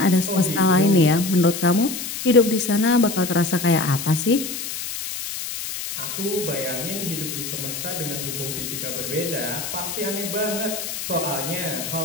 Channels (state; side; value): noise; left; hiss, 6 dB below the sound